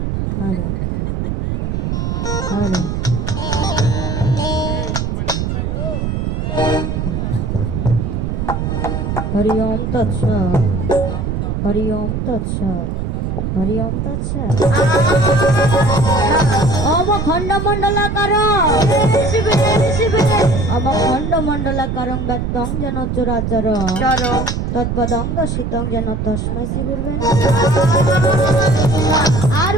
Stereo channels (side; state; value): right; noise; rumble, 2 dB below the sound